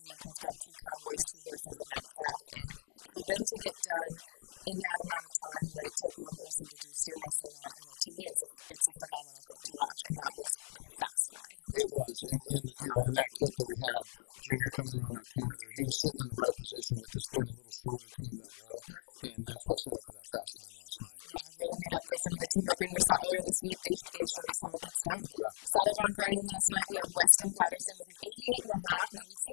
We've got 2 cowboys, 2 horses, and that calf, and for them to get done in that amount of time, what it took one person to do steer wrestling on, you know, to me, it's a phenomenal thing to watch, and that was a fast ride. it was, and you know, in that clip that we had, Junior coming around that corner there, he was sitting in the right position with this being a little shorter coming to that wall. Yep. And that's what set up for that fast time last night. Yeah, really made up for some of the team roping we saw earlier this week. They showed us how it gets done. Yeah. Saddle bronc riding last night, we had Weston Patterson with an 88.5. Now, we've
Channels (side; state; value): right; silent; digital silence